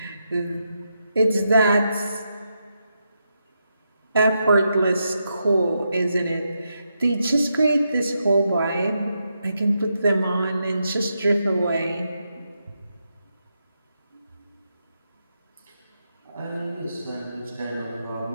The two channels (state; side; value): inverted; both; correlation -0.84